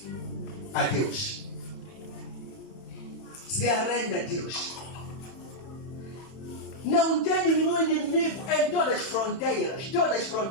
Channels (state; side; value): late; right; 31 ms